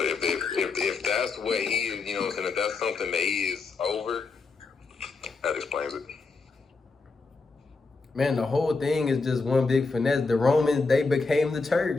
if that's what he is, you know what I'm saying, if that's something that he is over, that explains it. Man, the whole thing is just one big finesse. The Romans, they became the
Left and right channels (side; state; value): right; quieter; 4.2 dB